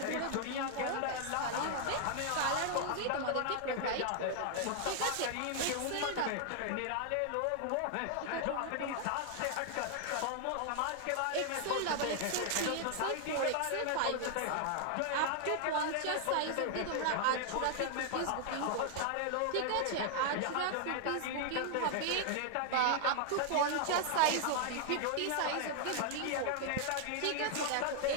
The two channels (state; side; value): different; both; correlation 0.00